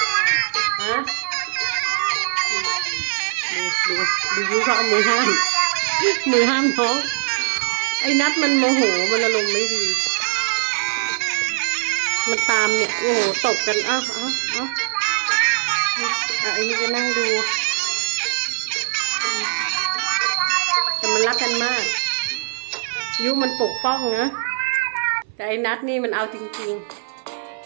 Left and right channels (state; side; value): silent; left; 58 dB below the other